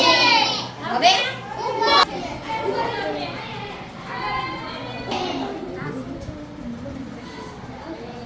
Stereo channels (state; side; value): identical; both; correlation 1.00